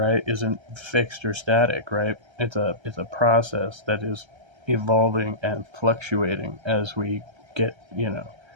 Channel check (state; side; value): late; left; 1.3 ms